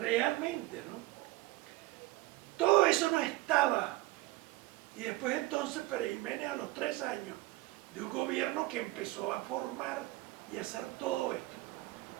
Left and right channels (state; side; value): quieter; left; 19.3 dB